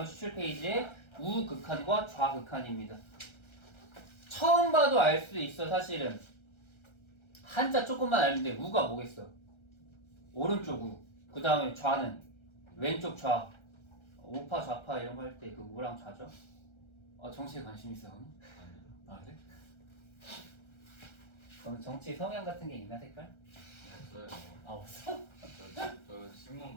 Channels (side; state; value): right; late; 1.3 ms